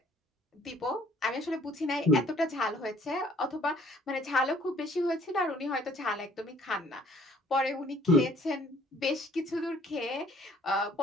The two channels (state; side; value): normal; both; correlation 0.59